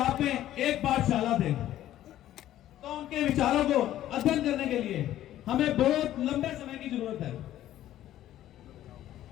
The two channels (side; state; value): right; quieter; 13.0 dB